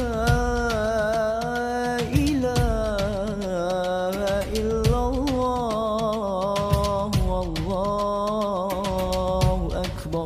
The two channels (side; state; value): both; identical; correlation 1.00